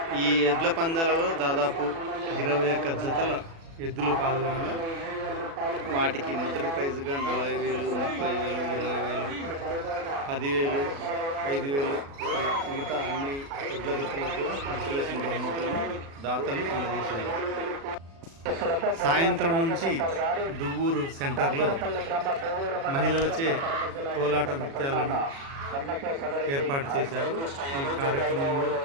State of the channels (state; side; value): late; left; 36 ms